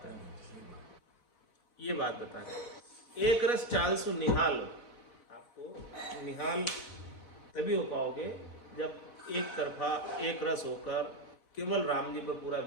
ये बात बता रहे। एक रस चाल सु निहाल। आपको निहाल तभी हो पाओगे जब एक तरफा एक रस होकर केवल राम जी पर पूरा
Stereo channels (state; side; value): late; right; 4.1 ms